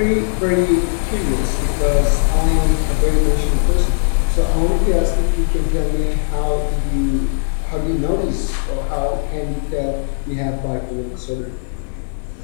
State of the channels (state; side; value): silent; right; 60 dB below the other